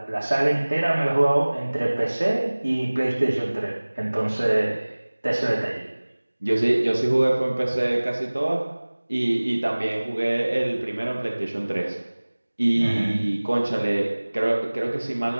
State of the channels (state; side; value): inverted; both; correlation -1.00